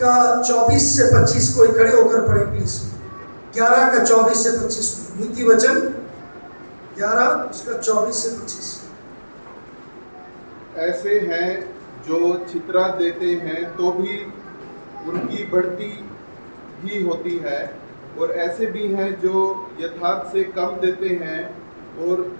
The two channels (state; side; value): inverted; both; correlation -1.00